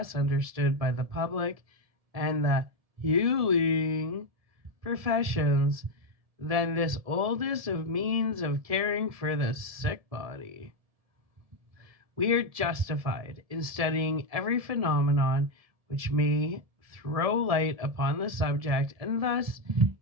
understood by the public and the healing professions than this oldest of means of caring for the sick body. We are justified in studying every phenomenon which may throw light upon the subject and thus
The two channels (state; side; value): late; left; 1.7 ms